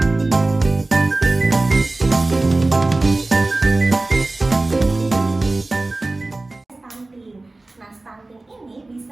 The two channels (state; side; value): quieter; left; 3.0 dB